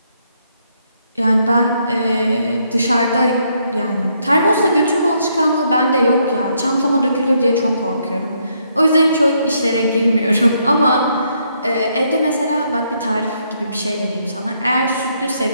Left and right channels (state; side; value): inverted; both; correlation -0.74